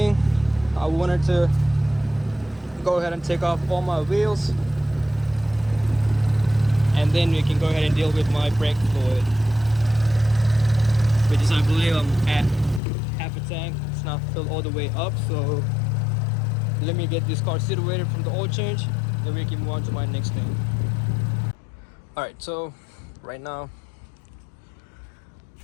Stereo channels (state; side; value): drops out; right; at 12.8 s